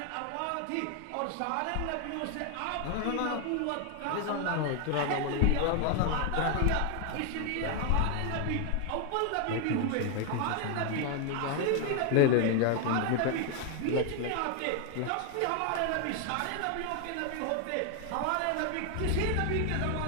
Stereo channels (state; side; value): different; both; correlation 0.01